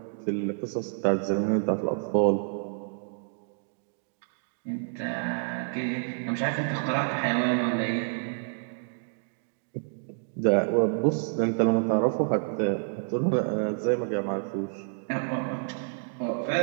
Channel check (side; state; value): left; silent; digital silence